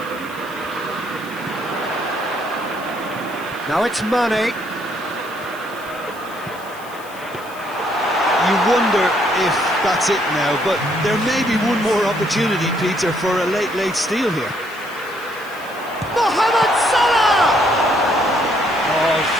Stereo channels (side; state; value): left; noise; hiss, 20 dB below the sound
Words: Now it's Mane. You wonder if that's it now, but there may be one more opportunity, Peter, for a late steal here. Mohamed Salah! Oh,